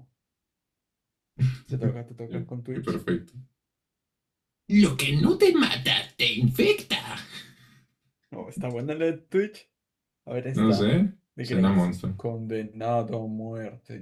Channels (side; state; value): both; identical; correlation 1.00